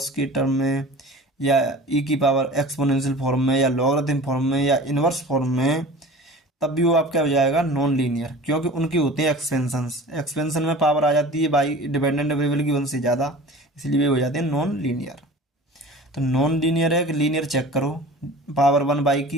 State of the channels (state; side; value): normal; both; correlation 0.39